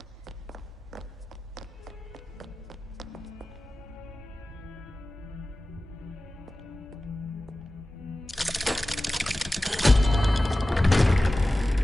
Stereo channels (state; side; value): normal; both; correlation 0.96